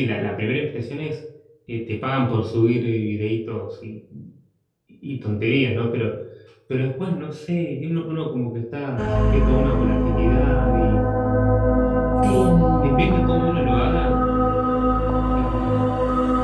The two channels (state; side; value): identical; both; correlation 1.00